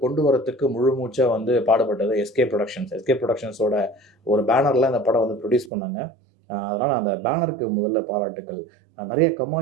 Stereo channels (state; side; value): drops out; left; at 5.7 s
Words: கொண்டு வரத்துக்கு முழு மூச்சாக வந்து பாடுபட்டது எஸ்கே ப்ரொடக்ஷன்ஸோட ஒரு பேனரில் இந்த படம் வந்து ப்ரொடியூஸ் பண்ணாங்க. அதனால் அந்த பேனருக்கு முதல்ல பாராட்டுக்கள். நிறைய